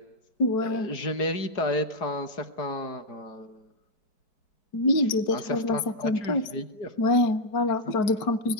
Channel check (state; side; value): late; right; 4.6 ms